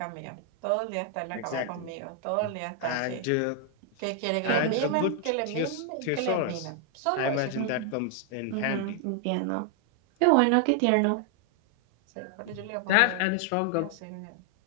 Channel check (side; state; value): both; different; correlation 0.00